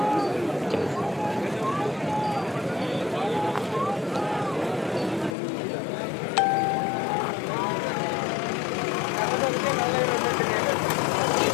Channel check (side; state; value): right; drops out; at 5.4 s